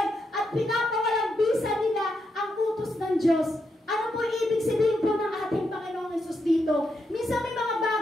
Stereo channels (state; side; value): normal; both; correlation 0.82